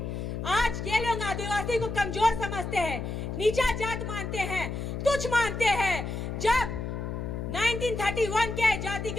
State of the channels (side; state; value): left; noise; hum, 4 dB below the sound